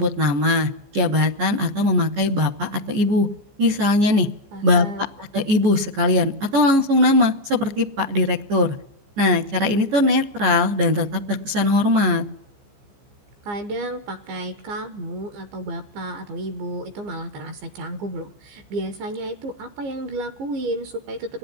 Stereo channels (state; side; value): late; left; 15 ms